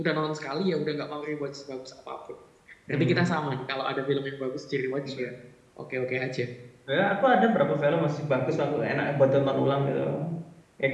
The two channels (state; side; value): identical; both; correlation 1.00